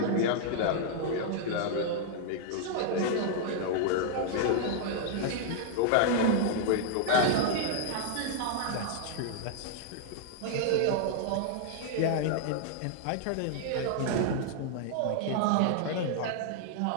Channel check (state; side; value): different; both; correlation 0.00